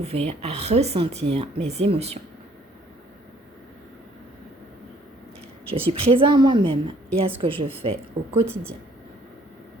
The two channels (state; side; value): normal; both; correlation 0.61